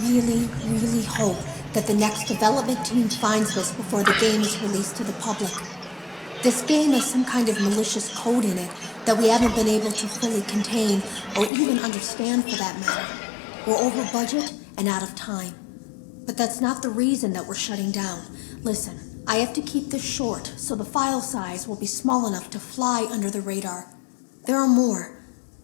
really, really hope that the next development team finds this before the game is released to the public. This game has some kind of malicious code in it that we haven't been able to fully contain or even understand for that matter. We're over budget and out of time. But that's not the reason that we're shutting down. Listen, I have to keep this short so the file size will be small enough to fly under the radar. There are more.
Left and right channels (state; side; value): drops out; right; at 11.5 s